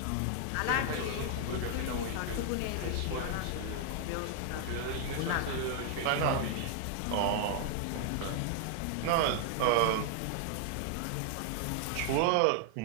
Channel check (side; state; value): both; different; correlation 0.00